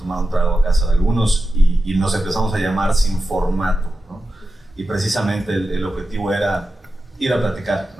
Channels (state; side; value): normal; both; correlation 0.92